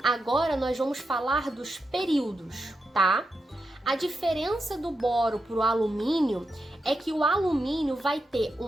Agora nós vamos falar dos períodos, tá? A diferença do boro para o alumínio é que o alumínio vai ter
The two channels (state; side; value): normal; both; correlation 0.87